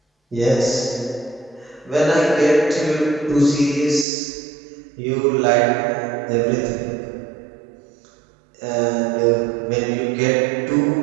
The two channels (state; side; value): drops out; left; at 4.0 s